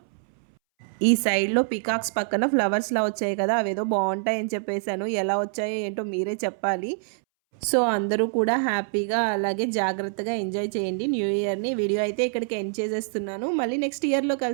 ఈ సైడ్లో పికాక్స్ పక్కన ఫ్లవర్స్లా వచ్చాయి కదా, అవేదో బాగుంటాయని చెప్పేశాను. ఎలా వచ్చాయో ఏంటో మీరే చెప్పాలి. సో అందరూ కూడా హ్యాపీగా అలాగే జాగ్రత్తగా ఎంజాయ్ చేయండి న్యూ ఇయర్ని. వీడియో అయితే ఇక్కడికి ఎండ్ చేసేస్తున్నాను. మళ్ళీ నెక్స్ట్ ఇయర్లో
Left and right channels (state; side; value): silent; left; 61 dB below the other